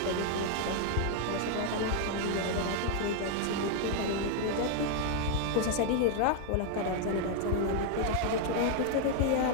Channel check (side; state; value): both; different; correlation 0.00